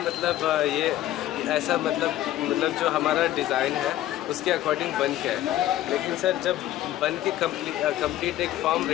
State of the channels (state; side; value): quieter; right; 13.8 dB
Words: मतलब ये ऐसा मतलब जो हमारा डिज़ाइन है उसके अकॉर्डिंग बन के है, लेकिन सर जब बन के कंप्लीट एक फॉर्म